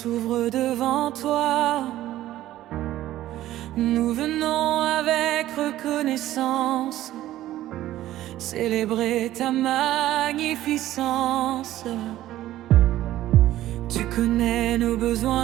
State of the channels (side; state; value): left; quieter; 14.2 dB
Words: devant toi. Nous venons avec reconnaissance célébrer ta magnificence. Tu connais nos